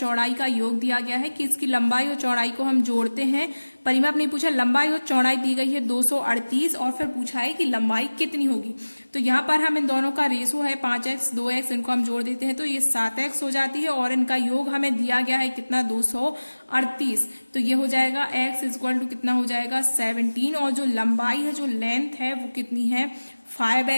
का योग दिया गया है कि इसकी लंबाई और चौड़ाई को हम जोड़ते हैं। परिमाप नहीं पूछा, लंबाई और चौड़ाई दी गई है 238 और फिर पूछा है कि लंबाई कितनी होगी। तो यहाँ पर हम इन दोनों का रेशो है 5x 2x, इनको हम जोड़ देते हैं तो ये 7x हो जाती है और इनका योग हमें दिया गया है कितना 238। तो ये हो जाएगा x इक्वल टू कितना हो जाएगा 17 और जो लंबाई है जो लेंथ है वो कितनी है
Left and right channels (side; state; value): both; inverted; correlation -1.00